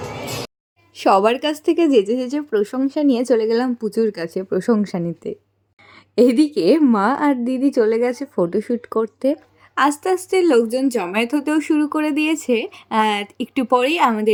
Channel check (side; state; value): both; identical; correlation 1.00